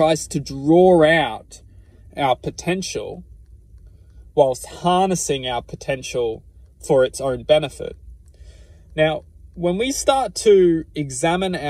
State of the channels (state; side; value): identical; both; correlation 1.00